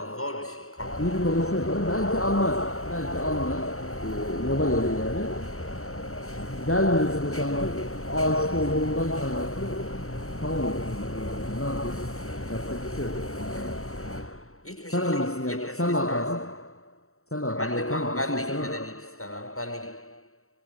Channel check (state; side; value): late; right; 0.64 ms